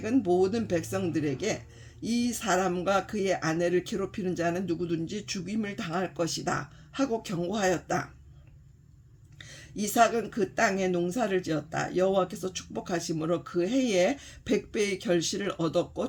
모든 백성들에게 이 사람과 그의 아내를 괴롭히는 자는 누구든지 죽임을 당할 것이다 하고 경고하였다. 이삭은 그 땅에 농사를 지었다. 여호와께서 축복하심으로 그 해에 100배의 결실을 얻었고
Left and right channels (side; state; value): both; identical; correlation 1.00